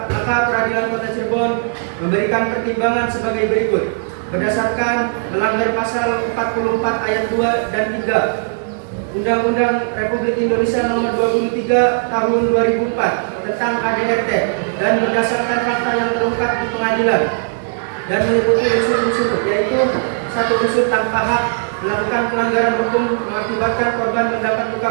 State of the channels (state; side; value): silent; left; 68 dB below the other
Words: maka Peradilan Kota Cirebon memberikan pertimbangan sebagai berikut. Berdasarkan melanggar pasal 44 ayat 2 dan 3 Undang-Undang Republik Indonesia Nomor 23 Tahun 2004 tentang KDRT dan berdasarkan fakta yang terungkap di pengadilan dan meliputi unsur-unsur, yaitu satu unsur tanpa hak melakukan pelanggaran hukum mengakibatkan korban mendapat luka